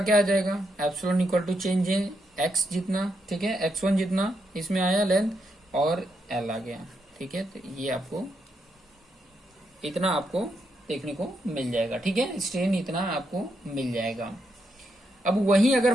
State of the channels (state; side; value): normal; both; correlation 0.80